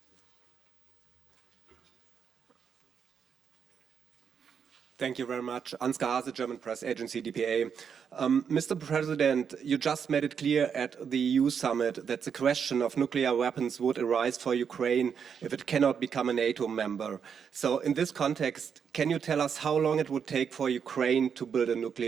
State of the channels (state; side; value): quieter; left; 7.1 dB